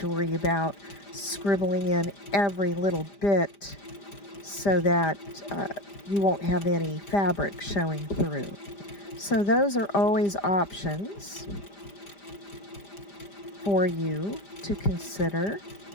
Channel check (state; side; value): late; right; 5.0 ms